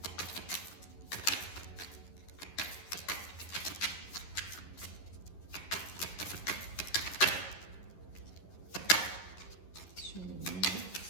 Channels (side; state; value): right; late; 11 ms